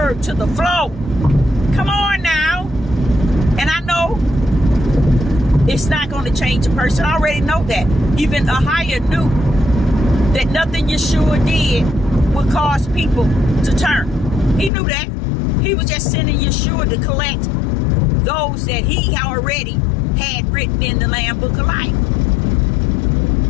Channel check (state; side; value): drops out; right; at 14.7 s